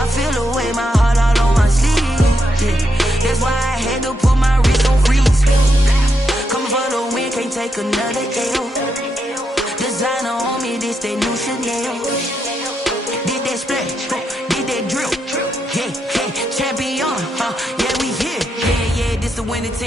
feel the way, my heart all on my sleeve. Yeah, that's why I had to put my wrist on freeze. Coming for the win, can't take another L. Designer on me, this that new Chanel. Did that splash, did that drill. Yeah, champion, yeah, we here. Yeah, this the winning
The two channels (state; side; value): normal; both; correlation 0.82